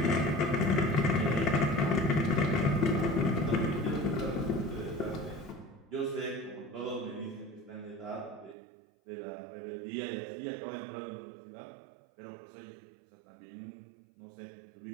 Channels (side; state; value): left; drops out; at 8.6 s